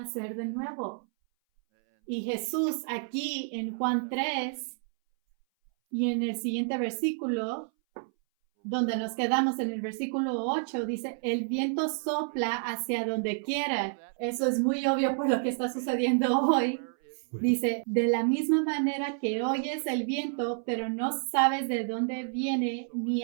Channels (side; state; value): left; silent; 58 dB below the other